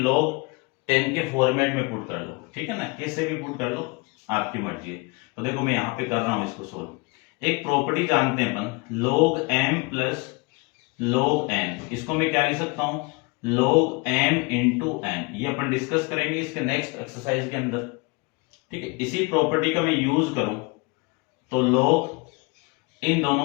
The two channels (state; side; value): quieter; right; 28.3 dB